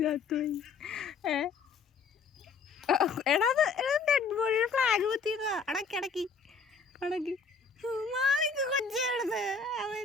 എടാ ഡെഡ് ബോഡിയുടെ ഫ്ലാഗ് കുത്തിയതാ. അടക്കി അടക്കി അടക്കി. കൊച്ചെടുത്ത് അവൻ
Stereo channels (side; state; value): right; quieter; 5.0 dB